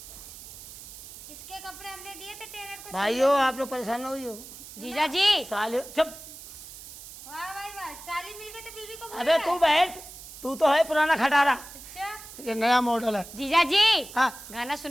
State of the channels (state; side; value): noise; right; hiss, 15 dB below the sound